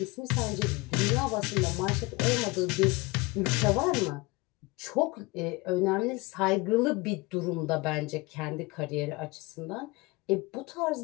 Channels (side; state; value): right; quieter; 24.0 dB